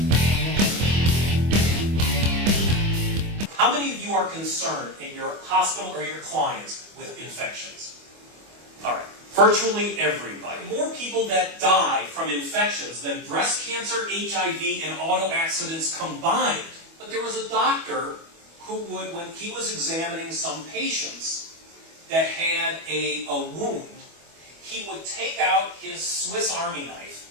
How many of you are concerned in your hospital or your clients with infections? All right, virtually everybody. More people that die from infections than breast cancer, HIV, and auto accidents combined. But there was a doctor who would, when he was examining some patients that had a wound, he would take out his Swiss Army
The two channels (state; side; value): late; left; 25 ms